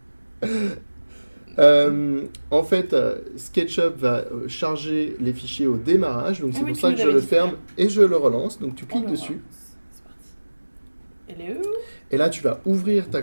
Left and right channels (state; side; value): inverted; both; correlation -1.00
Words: En fait, SketchUp va charger les fichiers au démarrage, donc Ah c'est oui, pour tu ça nous que je l'avais le dit ferme tout et je le relance. Donc tu Oh cliques là dessus là. C'est parti. Elle est où? et là tu vas ouvrir ta